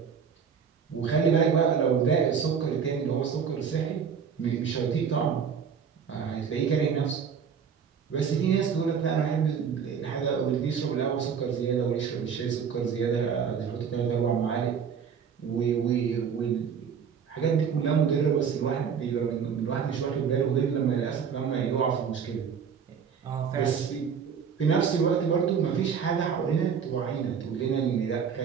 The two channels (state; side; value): quieter; left; 6.9 dB